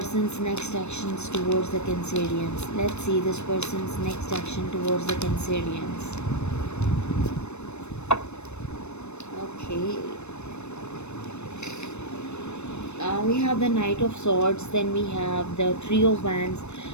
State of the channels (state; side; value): late; right; 0.81 ms